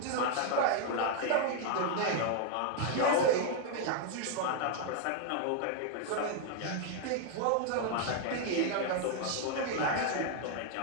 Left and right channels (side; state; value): both; different; correlation 0.00